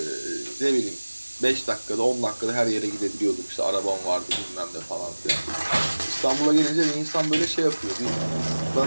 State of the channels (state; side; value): inverted; both; correlation -1.00